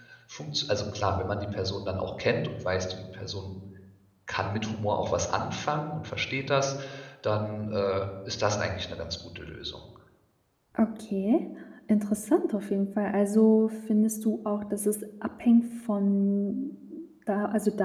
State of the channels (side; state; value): both; identical; correlation 1.00